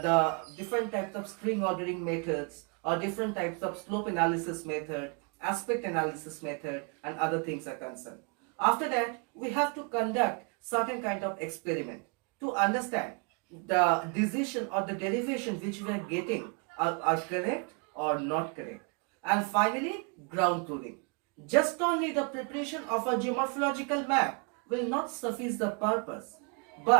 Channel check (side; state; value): left; quieter; 37.2 dB